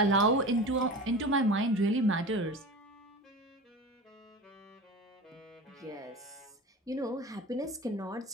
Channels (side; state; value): both; normal; correlation 0.32